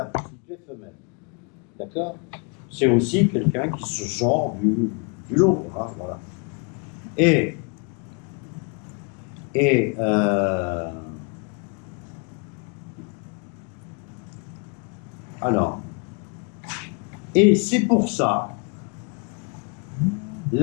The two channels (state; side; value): quieter; right; 34.5 dB